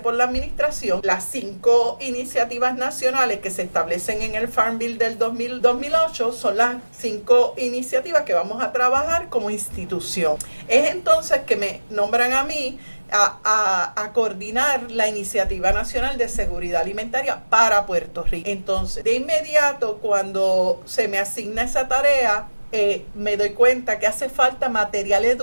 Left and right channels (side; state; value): both; inverted; correlation -1.00